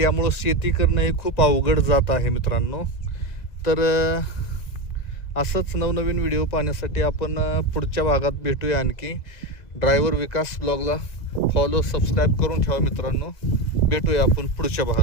शेती करणं हे खूप अवघड जात आहे मित्रांनो। तर असंच नवनवीन व्हिडिओ पाहण्यासाठी आपण पुढच्या भागात भेटूया। आणखी ड्रायव्हर विकास ब्लॉगला फॉलो सबस्क्राईब करून ठेवा मित्रांनो। भेटूया आपण पुढच्या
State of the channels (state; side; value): late; right; 1.9 ms